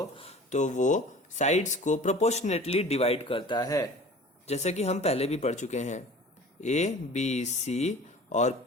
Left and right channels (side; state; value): both; normal; correlation 0.43